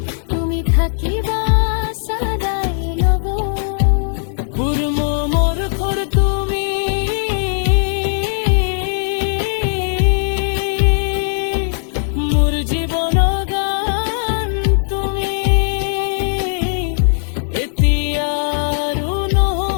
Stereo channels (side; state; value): right; silent; 65 dB below the other